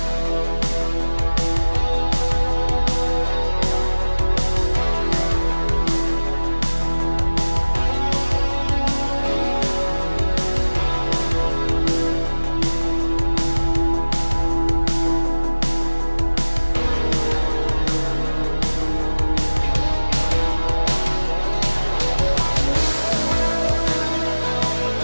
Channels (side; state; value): both; inverted; correlation -1.00